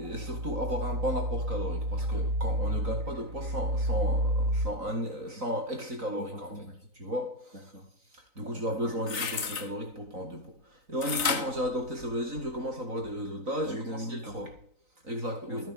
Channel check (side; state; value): left; late; 3.9 ms